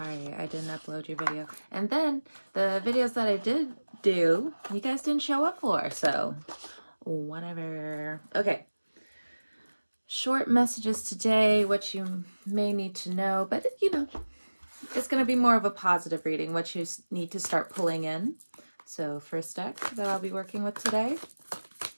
I didn't upload your video. And then the videos that I did do, you guys didn't show up for, so whatever. Okay, short messages today, what you may need to know, but you know, it's going to be more of a positive reading, what you need to start pulling in. So first deck that I'll be working with today.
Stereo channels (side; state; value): both; inverted; correlation -1.00